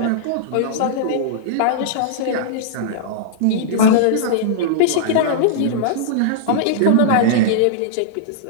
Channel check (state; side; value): different; both; correlation -0.02